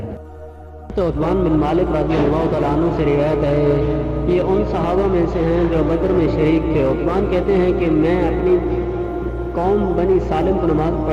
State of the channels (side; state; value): both; identical; correlation 1.00